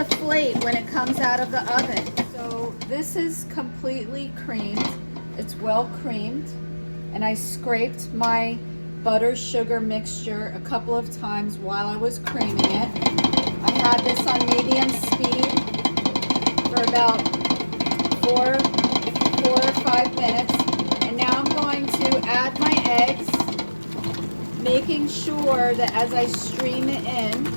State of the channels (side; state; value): both; inverted; correlation -1.00